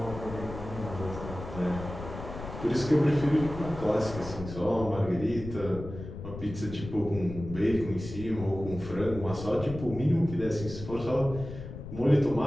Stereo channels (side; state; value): left; noise; rumble, 10 dB below the sound